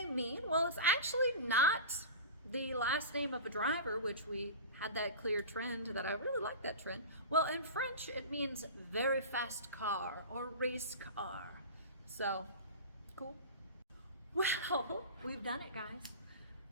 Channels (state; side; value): inverted; both; correlation -0.30